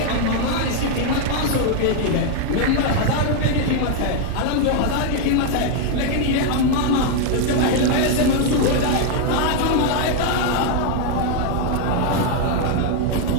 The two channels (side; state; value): both; different; correlation 0.01